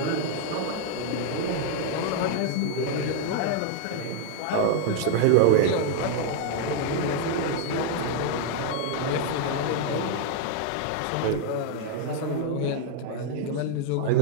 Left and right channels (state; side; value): different; both; correlation 0.00